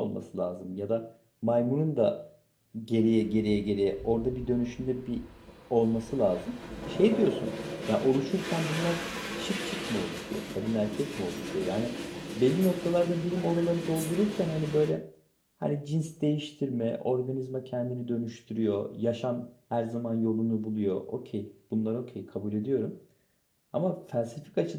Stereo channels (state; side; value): identical; both; correlation 1.00